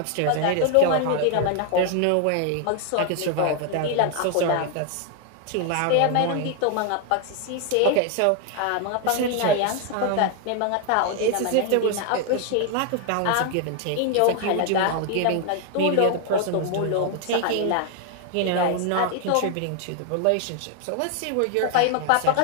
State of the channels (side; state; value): both; different; correlation 0.00